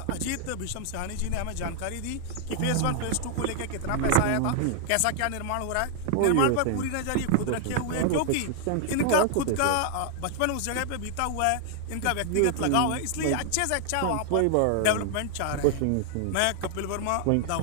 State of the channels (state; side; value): different; both; correlation 0.00